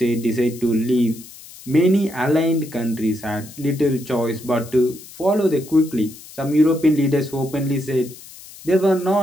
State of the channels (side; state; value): left; noise; hiss, 18 dB below the sound